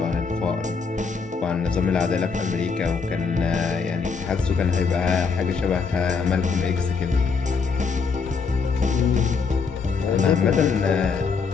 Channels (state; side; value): quieter; right; 5.2 dB